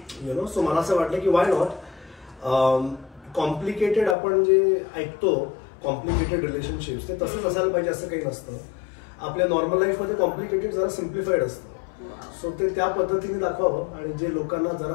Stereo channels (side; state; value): right; drops out; at 4.2 s